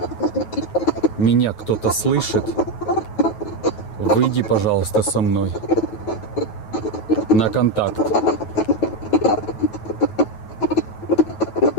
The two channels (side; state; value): right; late; 9.2 ms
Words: меня кто-то слышит, выйди, пожалуйста, со мной на контакт.